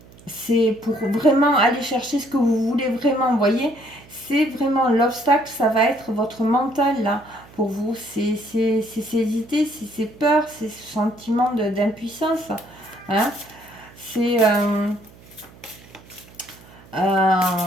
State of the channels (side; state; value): right; noise; hum, 23 dB below the sound